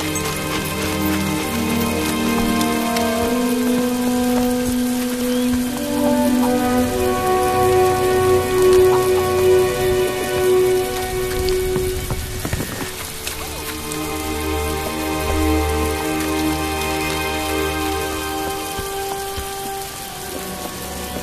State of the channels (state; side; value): identical; both; correlation 1.00